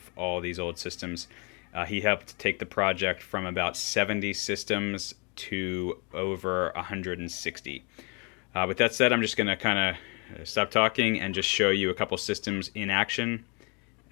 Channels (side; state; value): right; quieter; 33.4 dB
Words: all these old systems. He helped take the project from about 70 systems to over 160. With that said, I'm just going to kind of stop talking and just show you a couple systems in action.